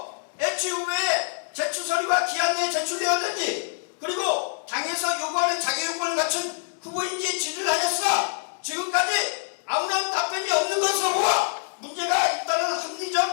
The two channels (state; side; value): silent; right; digital silence